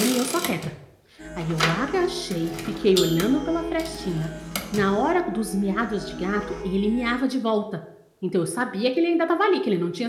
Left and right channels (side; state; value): both; identical; correlation 1.00